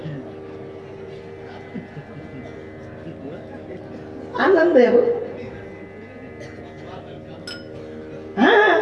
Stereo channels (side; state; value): both; identical; correlation 1.00